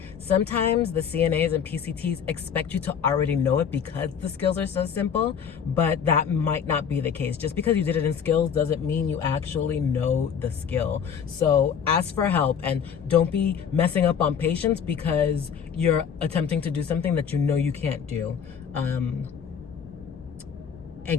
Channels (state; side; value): quieter; right; 7.4 dB